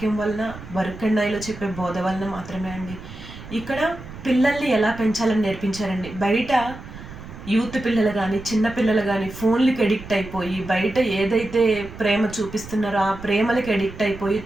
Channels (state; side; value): noise; right; rumble, 14 dB below the sound